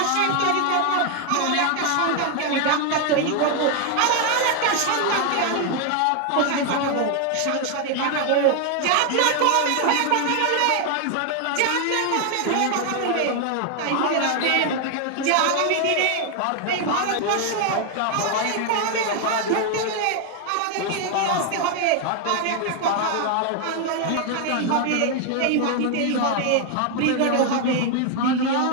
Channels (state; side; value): different; both; correlation 0.00